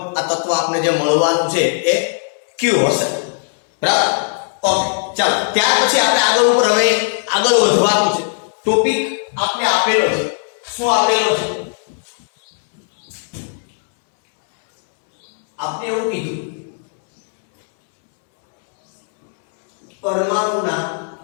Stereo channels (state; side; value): silent; right; 68 dB below the other